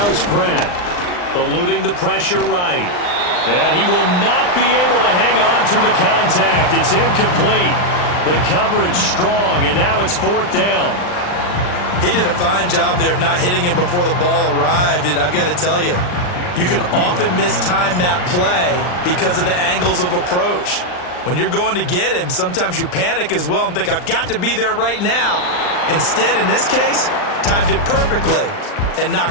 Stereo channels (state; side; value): late; right; 39 ms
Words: is Pratt. Eluding the pressure right. And he will not be able to hang on through the contact. It's incomplete. The coverage strong, and now it's 4th down. He did a fine job there of not hitting him before the ball arrived, and I've got to tell you, You can often mistime that play because of the angles of approach. When you're going to get him, sometimes you panic as well and think, I've got to be there right now. Instead, in this case, timed it perfectly and